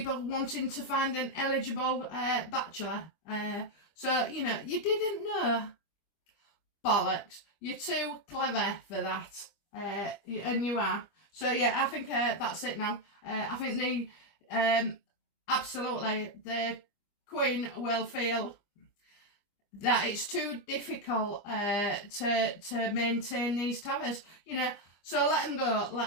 wanting to find an eligible bachelor? So, you know, you didn't know. Bollocks. You're too clever for that. And you are. So, yeah, I think that's it now. I think absolutely, the Queen will feel that it's too difficult to maintain these towers, you know. So let them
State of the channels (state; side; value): late; right; 25 ms